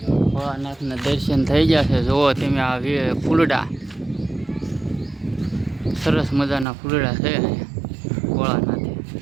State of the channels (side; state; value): left; drops out; at 6.7 s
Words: ભોળાનાથના દર્શન થઈ ગયા છે। જુઓ તમે આ ફૂલડા, સરસ મજાના ફૂલડા છે ભોળાનાથે।